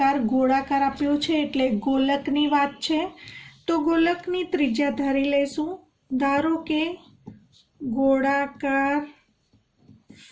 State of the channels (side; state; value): both; identical; correlation 1.00